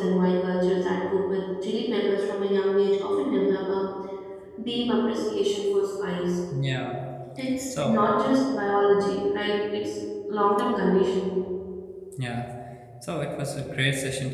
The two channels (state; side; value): identical; both; correlation 1.00